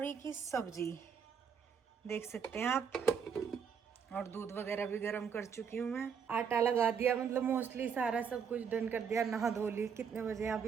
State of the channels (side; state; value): left; quieter; 6.8 dB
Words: की सब्जी, देख सकते हैं आप। और दूध वगैरह भी गर्म कर चुकी हूँ मैं। आटा लगा दिया, मतलब मोस्टली सारा सब कुछ डन कर दिया। नहा धो ली। कितने बजे आप